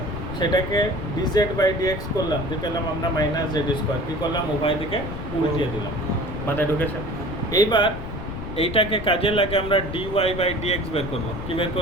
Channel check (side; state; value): left; noise; rumble, 8 dB below the sound